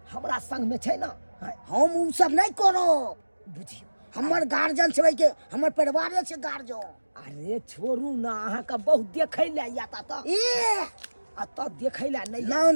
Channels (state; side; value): inverted; both; correlation -1.00